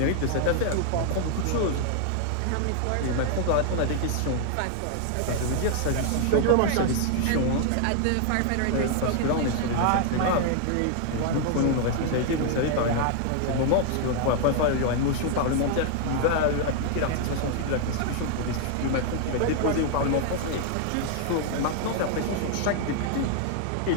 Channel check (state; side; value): different; both; correlation 0.00